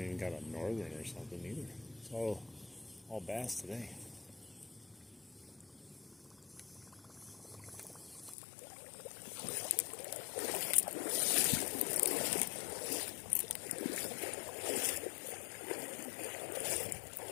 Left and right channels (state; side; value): drops out; right; at 8.3 s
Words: even got a northern or something either. It's all bass today.